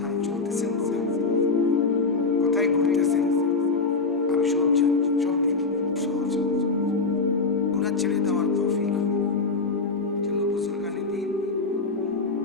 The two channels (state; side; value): quieter; right; 4.1 dB